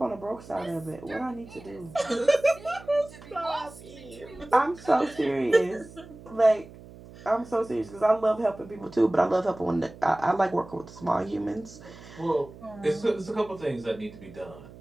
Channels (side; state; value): right; noise; hum, 18 dB below the sound